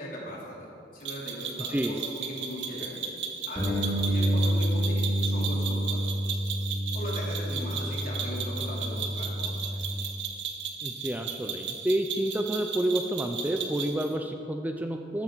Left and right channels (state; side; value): normal; both; correlation 0.76